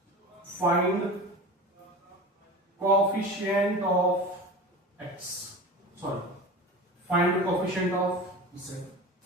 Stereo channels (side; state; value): both; normal; correlation 0.32